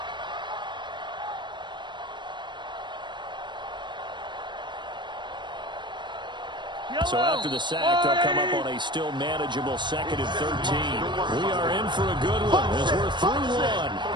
So after the sack, they'll come up on a still manageable 2nd and 13. We are in for a good one as we're through one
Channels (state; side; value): late; left; 0.22 ms